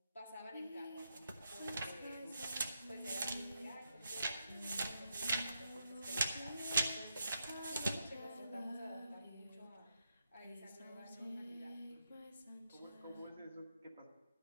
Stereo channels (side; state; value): both; inverted; correlation -0.83